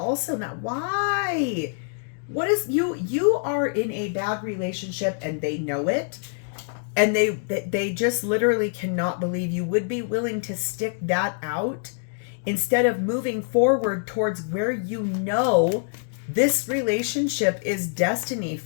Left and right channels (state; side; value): silent; right; 62 dB below the other